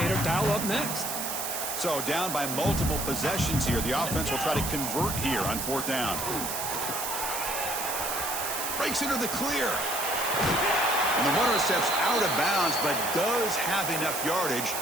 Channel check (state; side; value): noise; right; hiss, 3 dB below the sound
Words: dial up next? So down by multiple possessions here. The offense will try to convert here on fourth down. Breaks into the clear. And the runner steps out of bounds, but does have enough yardage